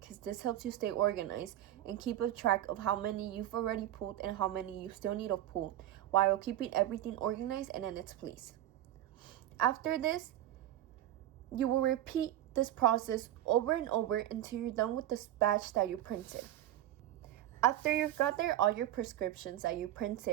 this helps you stay organized and keep a track of how many you've already pulled and how many you still need to pull, while keeping everything organized and in its place. After this, you will repeat this process over and over until you're done with the batch that you printed. After you've gathered all your prescriptions that you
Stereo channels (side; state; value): left; quieter; 13.1 dB